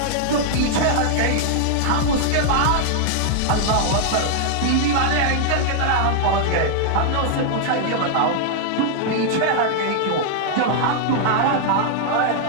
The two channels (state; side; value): different; both; correlation -0.01